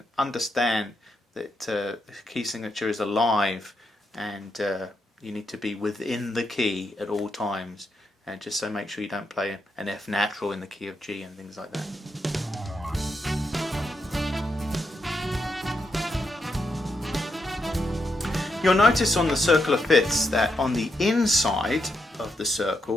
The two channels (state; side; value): normal; both; correlation 0.82